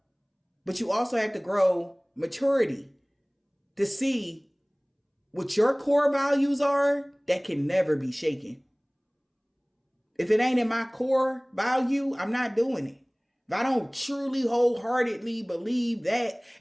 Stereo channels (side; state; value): both; identical; correlation 1.00